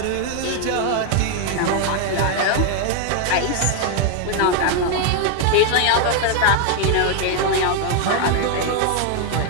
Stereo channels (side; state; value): both; different; correlation 0.00